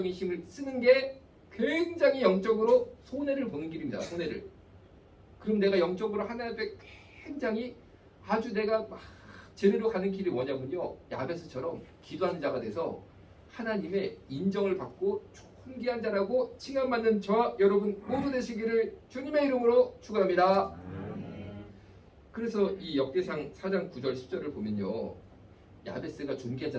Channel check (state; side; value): identical; both; correlation 1.00